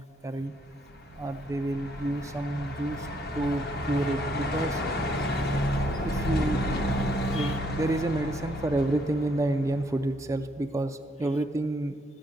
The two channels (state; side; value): normal; both; correlation 0.72